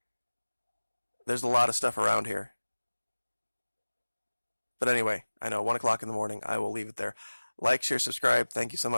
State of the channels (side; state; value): both; inverted; correlation -1.00